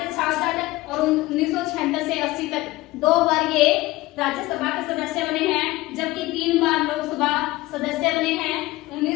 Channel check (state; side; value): quieter; right; 19.1 dB